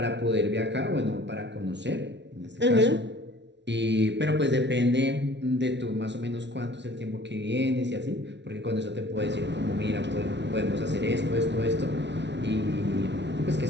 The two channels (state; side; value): late; left; 0.51 ms